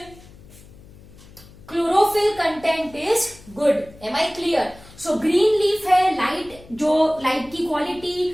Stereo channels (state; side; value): noise; left; hum, 22 dB below the sound